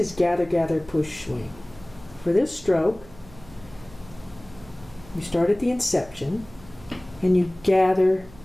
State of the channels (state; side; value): noise; right; hum, 21 dB below the sound